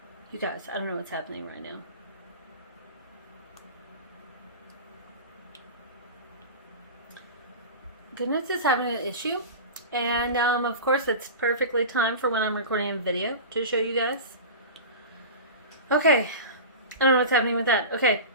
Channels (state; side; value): inverted; both; correlation -0.30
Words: You guys, I don't know what's happening right now. GoodNotes is having an issue, and of course it's perfectly timed for when I'm recording a video to show you guys. Okay, I don't know what's happening with that. Okay,